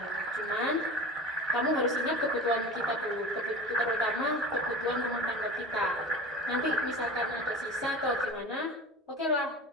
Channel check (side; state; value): both; normal; correlation 0.35